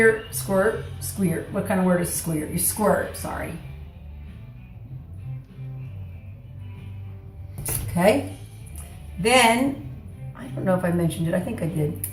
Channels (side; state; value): both; identical; correlation 1.00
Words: what kind of word is squirt? You squirt, sorry. Okay, then, I don't know if I mentioned it, I think I did.